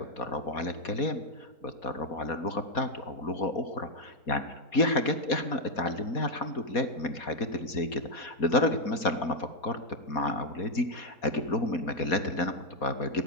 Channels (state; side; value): late; right; 4.2 ms